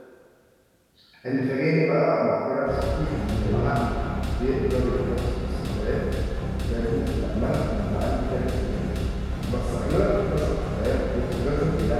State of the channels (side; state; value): both; identical; correlation 1.00